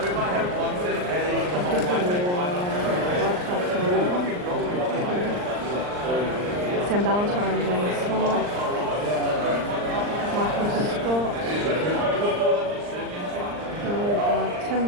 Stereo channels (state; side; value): late; left; 39 ms